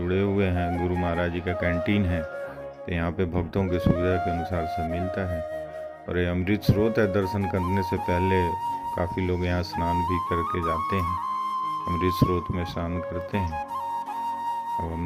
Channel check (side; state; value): both; identical; correlation 1.00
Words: हुए हैं। गुरु महाराज जी का कैंटीन है, तो यहाँ पे भक्तों की सुविधा के अनुसार सब मिलता है। और ये अमृत स्रोत है, दर्शन करने से पहले काफ़ी लोग यहाँ स्नान भी करके जाते हैं, अमृत स्रोत में स्नान करते हैं। अब